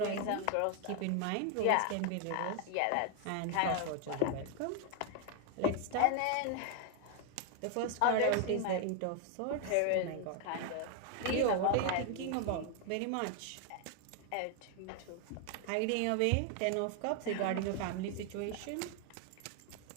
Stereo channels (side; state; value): both; different; correlation 0.00